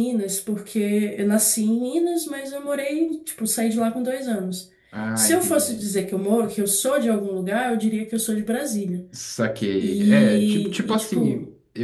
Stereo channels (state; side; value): identical; both; correlation 1.00